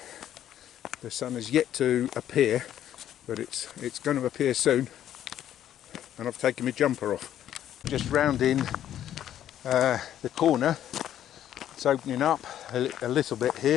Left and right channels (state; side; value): quieter; right; 11.1 dB